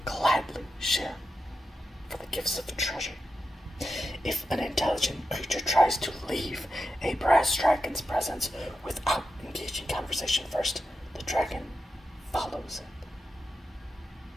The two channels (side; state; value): both; normal; correlation 0.89